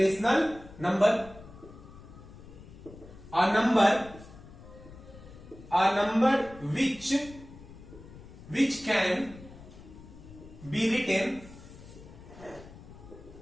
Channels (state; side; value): noise; left; rumble, 18 dB below the sound